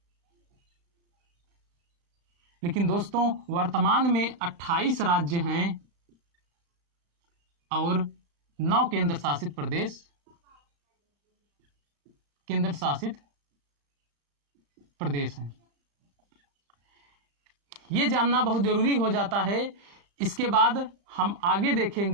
लेकिन दोस्तों, वर्तमान में 28 राज्य हैं और 9 केंद्र शासित प्रदेश हैं। ये जानना बहुत जरूरी हो जाता है। इसके बाद हम आगे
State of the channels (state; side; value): late; left; 35 ms